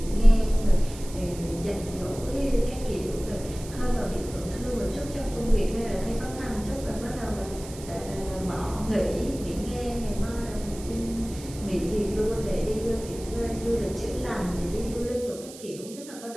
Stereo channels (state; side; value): noise; right; hiss, 16 dB below the sound